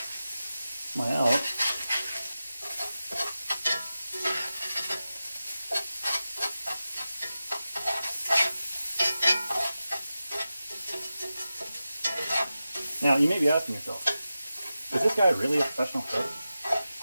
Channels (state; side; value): inverted; both; correlation -0.93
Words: out. Now, you may be asking yourself, is this guy really a professional cook?